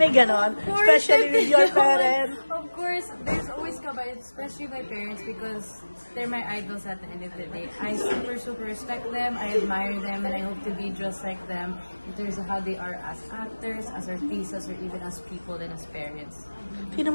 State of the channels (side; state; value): both; inverted; correlation -1.00